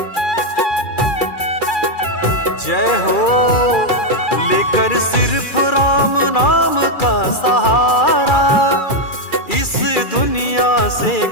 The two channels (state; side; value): late; right; 2.4 ms